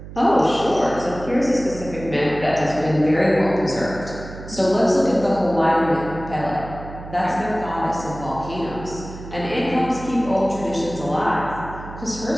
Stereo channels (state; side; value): noise; right; hum, 13 dB below the sound